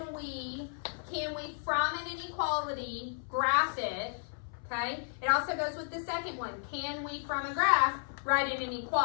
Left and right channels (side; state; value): right; silent; 56 dB below the other